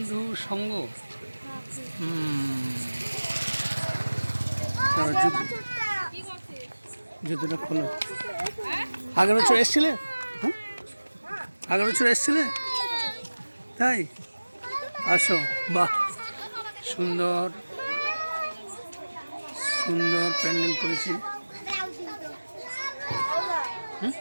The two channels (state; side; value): inverted; both; correlation -1.00